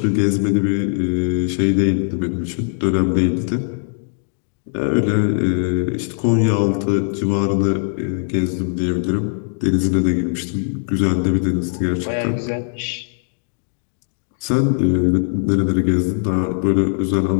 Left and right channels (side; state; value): right; silent; digital silence